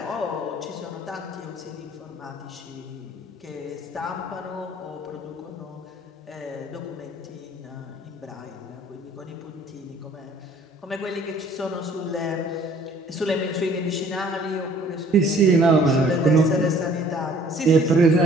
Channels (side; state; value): both; normal; correlation 0.56